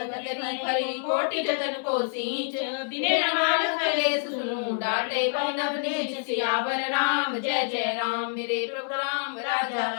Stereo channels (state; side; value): silent; right; 60 dB below the other